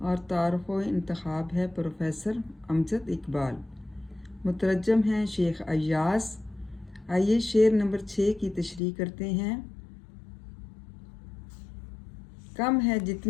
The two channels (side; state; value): right; drops out; at 8.8 s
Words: और तारुफ़ व इंतखाब है प्रोफेसर अमजद इकबाल। मुतरजम हैं शेख अय्यास। आइए शेर नंबर 6 की तशरीह करते हैं। कम है